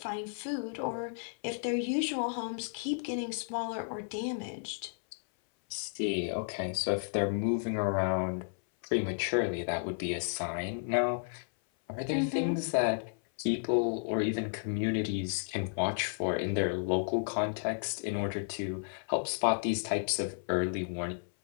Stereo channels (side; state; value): right; silent; 56 dB below the other